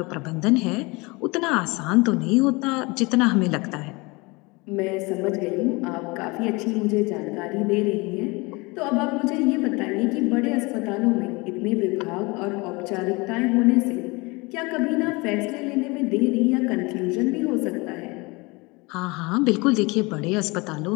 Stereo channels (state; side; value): quieter; right; 25.5 dB